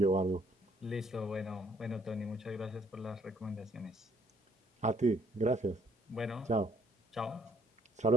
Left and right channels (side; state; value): both; normal; correlation 0.65